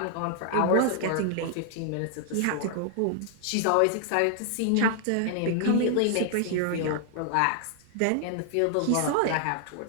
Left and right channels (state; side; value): different; both; correlation 0.00